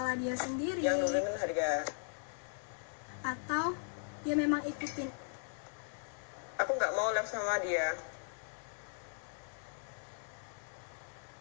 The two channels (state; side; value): silent; right; digital silence